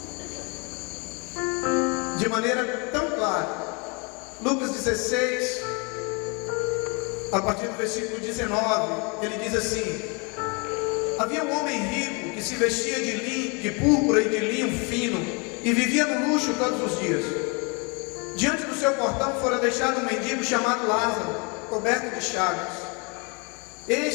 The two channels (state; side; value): quieter; right; 31.9 dB